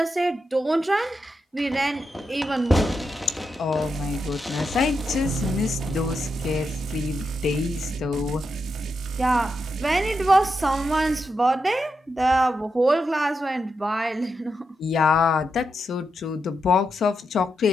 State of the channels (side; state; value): both; normal; correlation 0.85